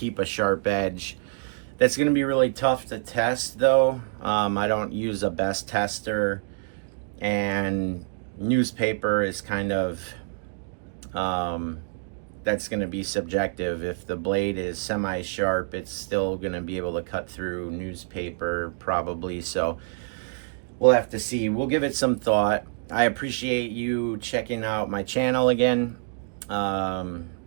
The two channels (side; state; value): left; silent; digital silence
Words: a sharp edge. That's going to be really tough to test though. I don't use a best tester, and newspaper is kind of that's going to be subjective. If the blade is semi-sharp, it's still going to be able to cut through newspaper probably. So we'll have to see. We'll give it some thought. I appreciate you checking out my channel again.